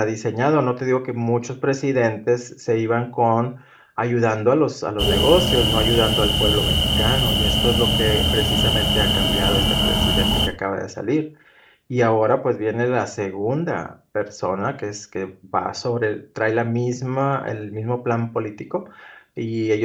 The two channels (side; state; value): both; identical; correlation 1.00